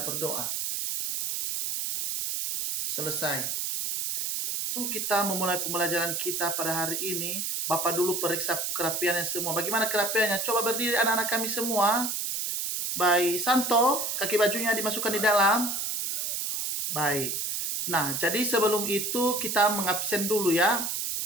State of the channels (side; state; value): right; noise; hiss, 2 dB below the sound